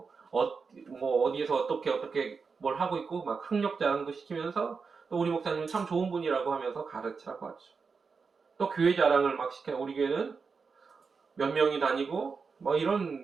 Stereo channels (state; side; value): quieter; left; 5.1 dB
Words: 어디에서 어떻게 뭘 하고 있고 막 학력 자랑도 시키면서 또 우리 목사님은 참 좋은 분이라고 하면서 가르치라고 하죠. 또 교회 자랑을 막 시켜요. 우리 교회는 몇 명이 다니고 뭐